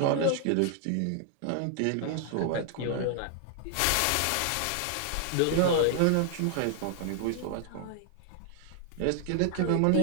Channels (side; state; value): both; different; correlation 0.00